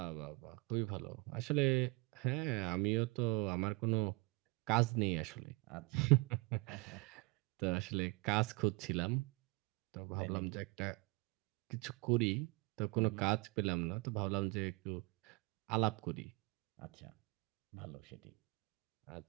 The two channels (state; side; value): quieter; left; 27.8 dB